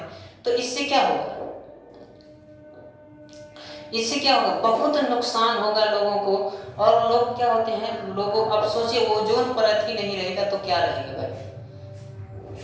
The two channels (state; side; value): identical; both; correlation 1.00